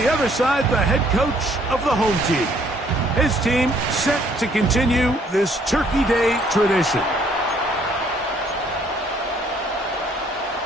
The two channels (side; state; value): both; normal; correlation 0.63